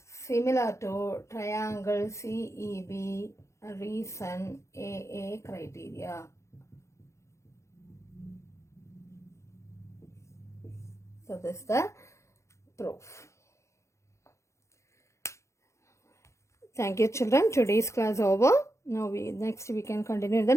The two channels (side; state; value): right; late; 0.14 ms